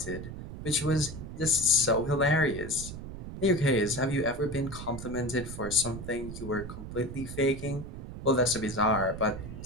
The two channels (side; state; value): right; noise; rumble, 10 dB below the sound